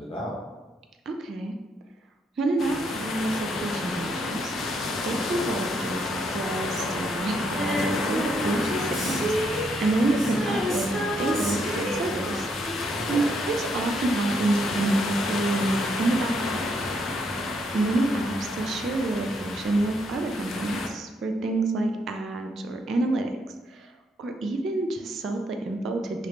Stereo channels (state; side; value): normal; both; correlation 0.74